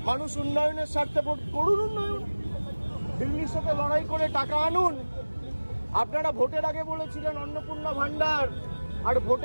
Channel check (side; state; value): both; inverted; correlation -1.00